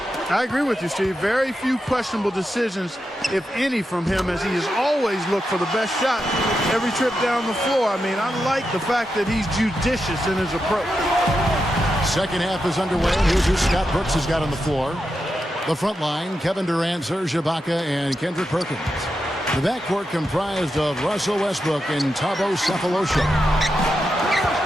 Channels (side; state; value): both; normal; correlation 0.87